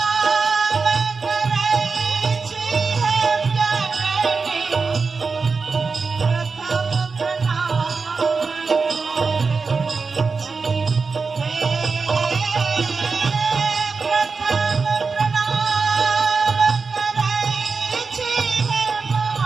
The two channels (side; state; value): left; quieter; 4.6 dB